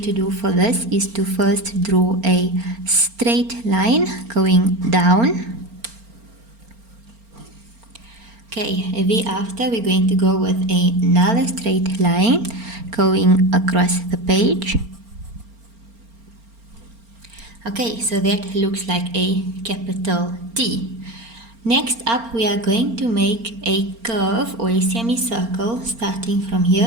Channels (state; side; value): late; left; 4.4 ms